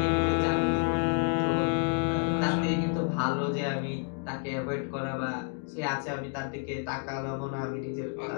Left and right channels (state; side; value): quieter; right; 38.9 dB